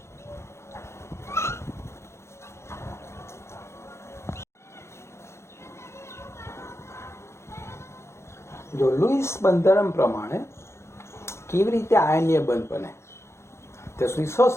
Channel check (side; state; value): right; late; 0.13 ms